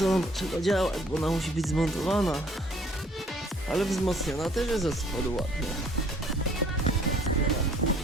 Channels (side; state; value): both; normal; correlation 0.58